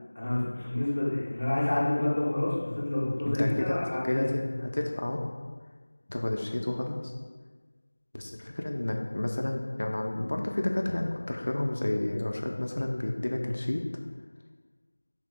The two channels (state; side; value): inverted; both; correlation -1.00